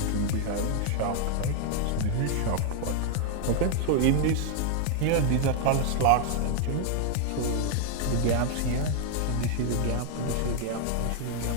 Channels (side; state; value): both; different; correlation 0.00